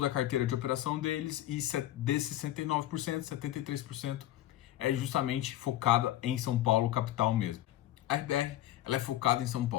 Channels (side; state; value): right; quieter; 13.9 dB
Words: a carteira de operação deles, e desses 69%, 73% é justamente focada em São Paulo, capital mesmo. A RBR, ela é focada em São